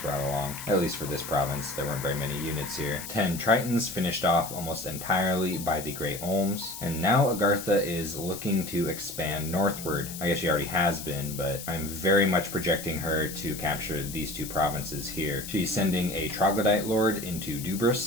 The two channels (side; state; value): left; noise; hiss, 10 dB below the sound